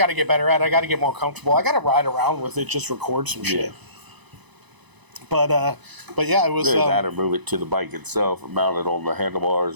to get better at it. I got to get more comfortable. I got to ride around with it, just record some shit. But yeah, it was. That or move it to the bike itself, or mount it on the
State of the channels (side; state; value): left; late; 1.0 ms